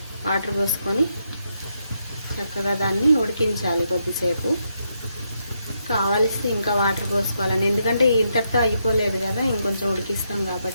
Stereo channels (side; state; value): both; inverted; correlation -0.80